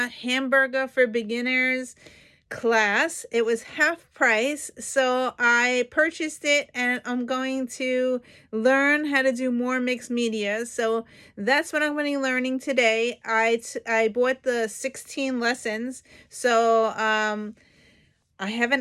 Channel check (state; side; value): identical; both; correlation 1.00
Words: hamburger for beginners class. It was half price, so I purchased it, and I'm going to learn how to do more mixed media. So that's what I'm going to be learning today. I bought the 16 lessons, so I have